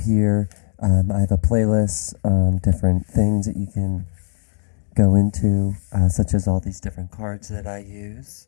I have a playlist on different things that you can go into, such as all these different cards that I use.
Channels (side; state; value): right; silent; digital silence